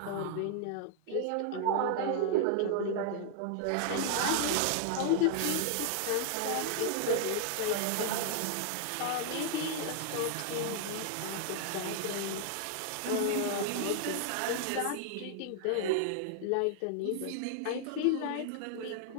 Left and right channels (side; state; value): both; different; correlation -0.01